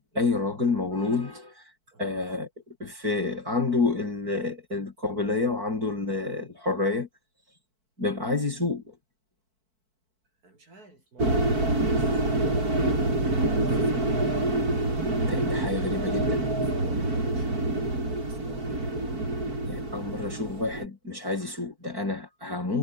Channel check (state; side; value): late; left; 4.5 ms